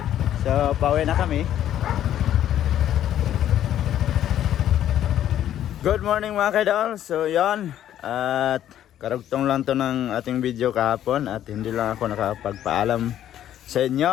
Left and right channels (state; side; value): quieter; right; 11.3 dB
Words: So, pauwi na kami. Good morning mga kaidol. So, yan. At karugtong lang to ng ating video kahapon at hindi lang ako nakapagpaalam sa